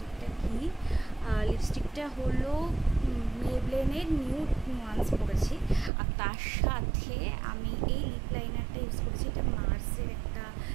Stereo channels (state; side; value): drops out; left; at 5.9 s